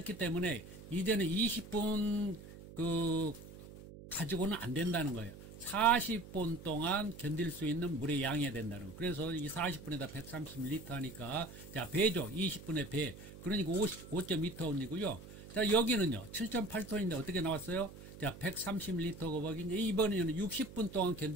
때문에 이제는 20분 가지고는 안 된다는 거예요. 40분 동안 견딜 수 있는 물의 양이 된다는 거. 그래서 이 40분에다 130ml 하니까, 자, 배죠. 20분의 배. 그러니까 5.2톤이고요. 자, 여기는요. 7.8톤인데 어떻게 나왔어요? 자, 130ml 곱하기, 이번에는 60분 동안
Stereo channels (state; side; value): noise; right; hum, 15 dB below the sound